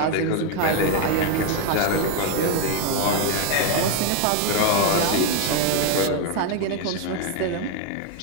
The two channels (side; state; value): both; different; correlation 0.01